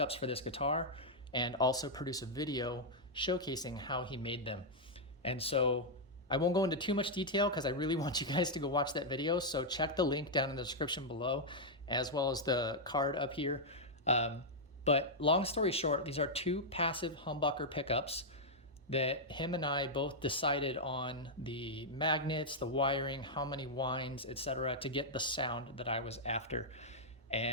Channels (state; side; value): normal; both; correlation -0.04